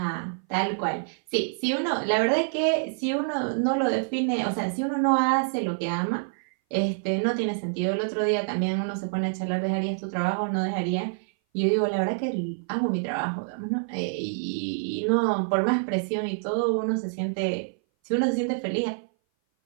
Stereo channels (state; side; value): silent; left; 58 dB below the other